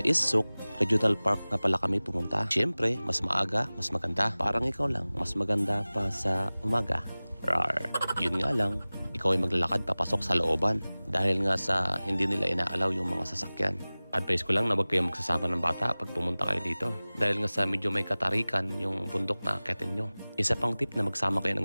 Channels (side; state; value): both; inverted; correlation -0.99